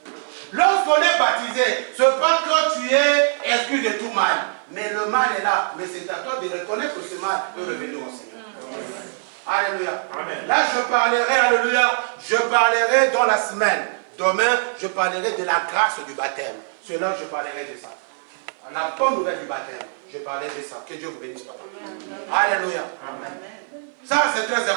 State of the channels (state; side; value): silent; left; 56 dB below the other